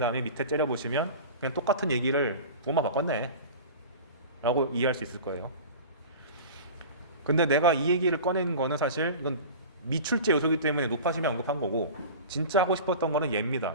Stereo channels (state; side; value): inverted; both; correlation -0.35